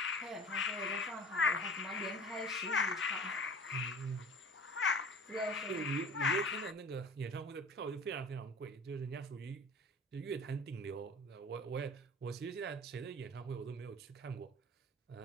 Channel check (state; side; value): normal; both; correlation 0.41